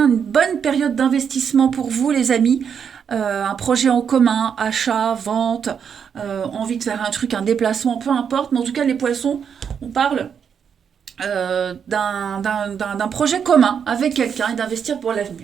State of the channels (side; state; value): left; quieter; 7.3 dB